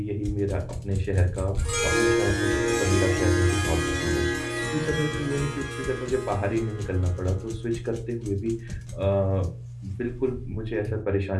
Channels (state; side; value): identical; both; correlation 1.00